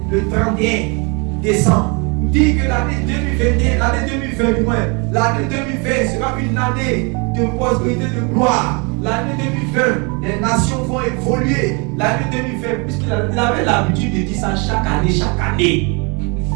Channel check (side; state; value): left; quieter; 31.7 dB